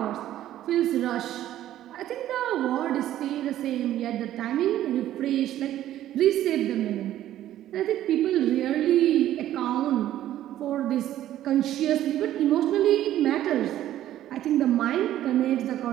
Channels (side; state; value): left; quieter; 12.8 dB